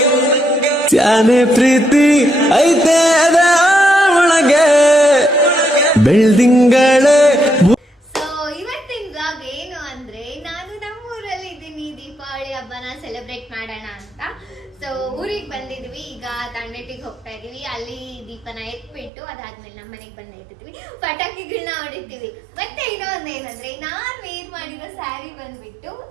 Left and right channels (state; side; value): drops out; left; at 19.1 s